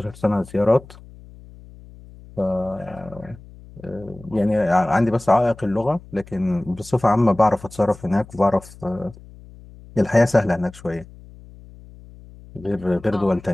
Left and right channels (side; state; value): left; noise; hum, 20 dB below the sound